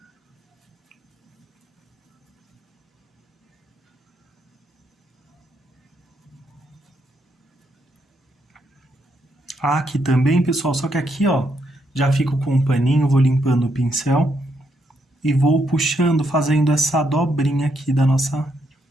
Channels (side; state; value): both; normal; correlation 0.77